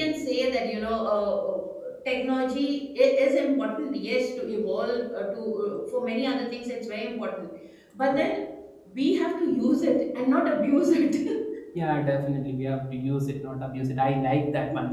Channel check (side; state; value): both; identical; correlation 1.00